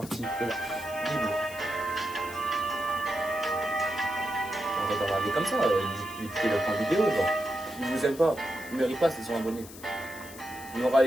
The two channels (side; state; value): left; noise; hiss, 16 dB below the sound